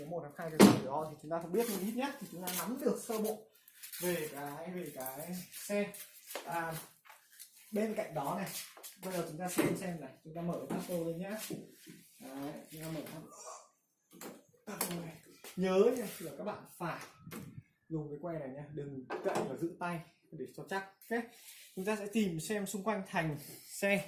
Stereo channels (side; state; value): both; identical; correlation 1.00